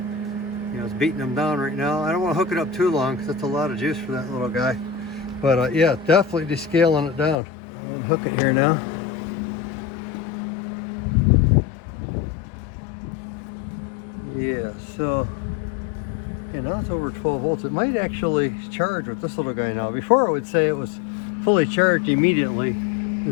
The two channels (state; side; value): drops out; right; at 7.4 s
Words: You know, it's beating them down right now. I don't want to hook it up too long because that's a lot of juice for that little guy. But yeah, definitely descaling it down. I'm gonna hook it here now. Yeah, so yeah, now it's over 12 volts. It might actually charge with this little guy now. Before it would say it was fully charged immediately